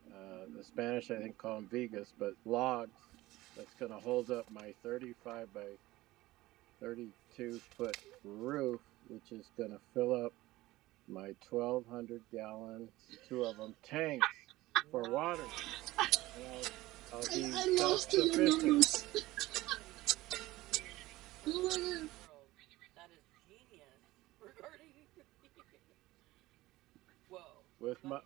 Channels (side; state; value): left; quieter; 18.1 dB